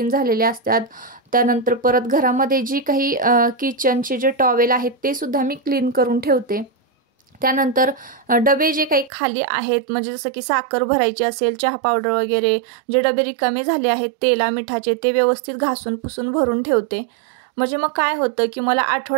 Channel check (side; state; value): left; drops out; at 9.1 s